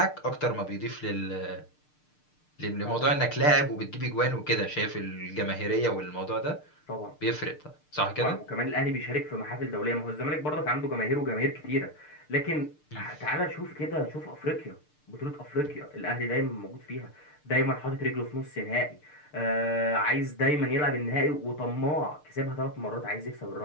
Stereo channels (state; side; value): late; right; 6.6 ms